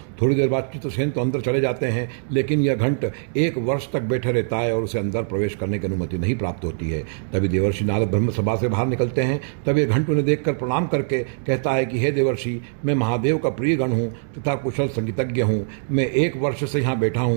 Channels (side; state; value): left; silent; digital silence